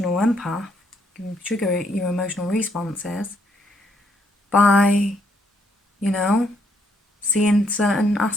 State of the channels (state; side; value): normal; both; correlation 0.71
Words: you can trigger your emotional responses by, you know, seeing certain